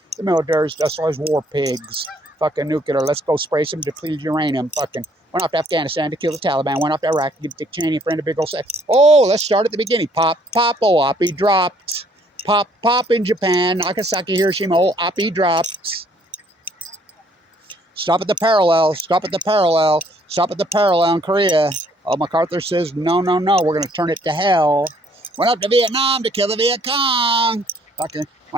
military's just as war pigs. Fucking nuclear. Let's go spray some depleted uranium. Fucking went off to Afghanistan to kill the Taliban. Went off to Iraq to give Dick Cheney a friend a big old sex. Oh, let's start at the beginning. Pop, Oapi dropped. Pop in Japan. Nagasaki, Hiroshima. Oh, Oapi dropped. Stop at the parallel in Korea. Oh, MacArthur says, no, we're going to turn it to hell. Went up to Vietnam to kill the Viet Cong. Fucking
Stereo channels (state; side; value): normal; both; correlation 0.64